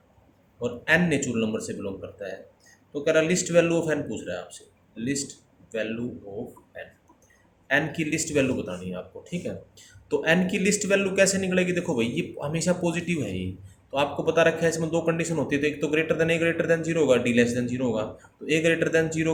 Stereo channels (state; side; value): identical; both; correlation 1.00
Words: और n नेचुरल नंबर से बिलोंग करता है। तो कह रहा लिस्ट वैल्यू ऑफ n पूछ रहा है आपसे, लिस्ट वैल्यू ऑफ n की लिस्ट वैल्यू बतानी है आपको, ठीक है। तो n की लिस्ट वैल्यू कैसे निकलेगी, देखो भाई ये हमेशा पॉजिटिव है ये, तो आपको पता रखा है इसमें दो कंडीशन होती है, तो एक तो ग्रेटर देन जीरो होगा, डी लेस देन जीरो होगा। तो ए ग्रेटर देन